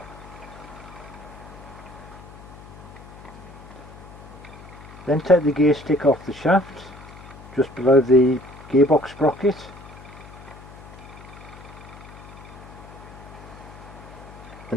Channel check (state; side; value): noise; left; hum, 17 dB below the sound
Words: Then take the gear stick off the shaft, just below the gearbox sprocket.